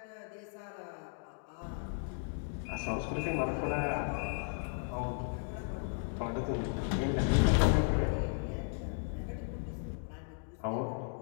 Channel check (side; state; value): right; silent; 54 dB below the other